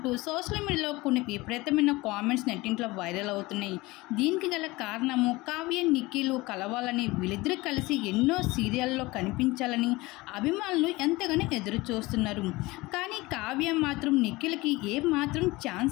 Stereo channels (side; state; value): right; quieter; 21.3 dB